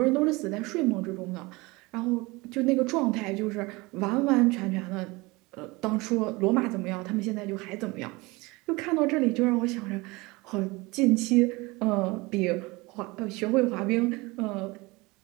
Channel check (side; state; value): left; quieter; 23.6 dB